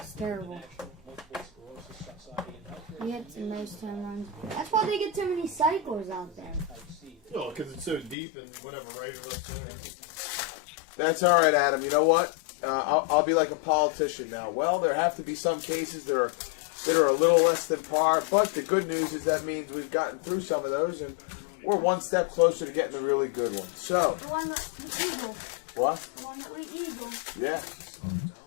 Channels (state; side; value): drops out; right; at 8.2 s